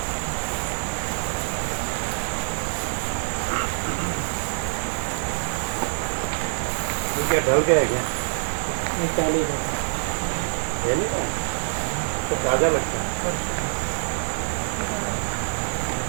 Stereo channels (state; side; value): silent; left; digital silence